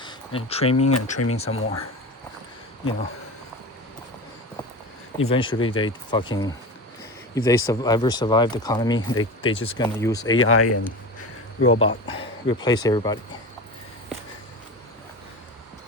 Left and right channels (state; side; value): normal; both; correlation 0.28